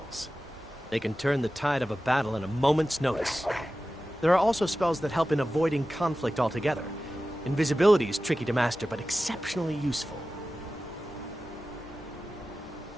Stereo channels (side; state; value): both; normal; correlation 0.94